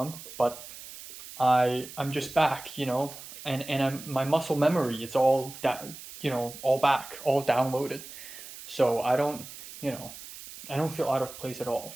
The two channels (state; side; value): noise; right; hiss, 14 dB below the sound